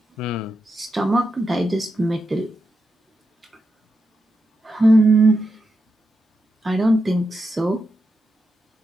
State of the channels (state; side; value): normal; both; correlation 0.86